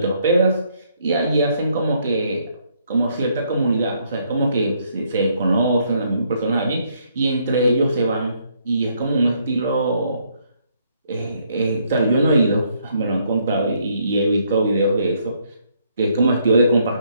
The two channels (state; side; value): inverted; both; correlation -0.71